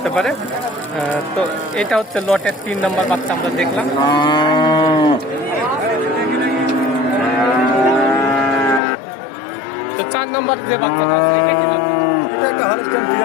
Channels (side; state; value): right; drops out; at 8.8 s